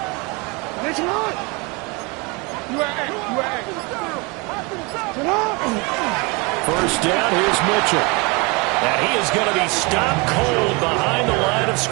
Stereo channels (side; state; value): left; quieter; 28.3 dB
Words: First down, here's Mitchell. And he is going to be stopped cold behind the line of